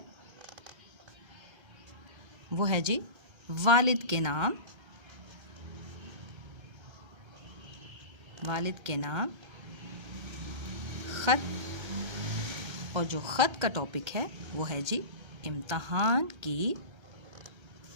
वो है जी वालिद के नाम, वालिद के नाम ख़त। और जो ख़त का टॉपिक है वो है जी इम्तहान की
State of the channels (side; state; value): left; late; 1.3 ms